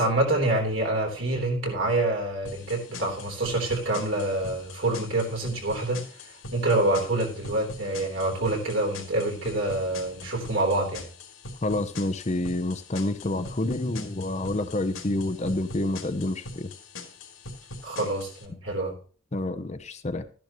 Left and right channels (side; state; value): both; normal; correlation 0.22